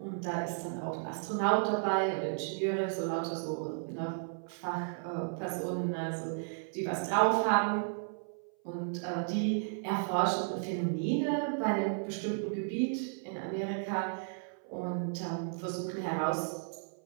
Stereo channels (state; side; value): silent; left; 55 dB below the other